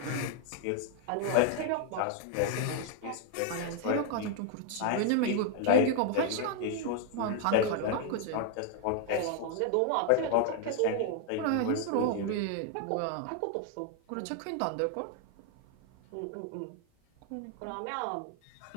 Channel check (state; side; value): different; both; correlation 0.00